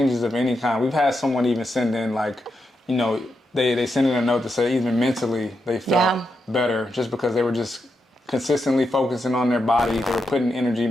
of any kind. We've had someone even send in like, they send in a note to say even mentally they felt better just because they were just consistently focusing on their body. They were putting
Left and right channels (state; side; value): normal; both; correlation 0.85